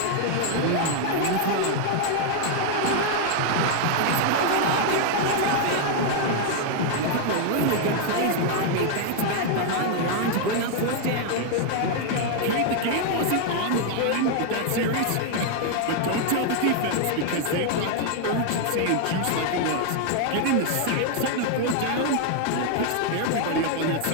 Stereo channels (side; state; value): both; different; correlation 0.00